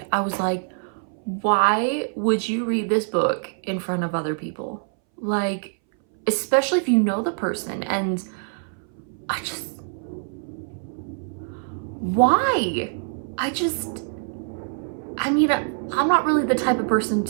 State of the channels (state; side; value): silent; left; 61 dB below the other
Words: I was like, why would you read this book in front of other people? Like, especially if you know the person, and why? I mean, I'm not really the type of person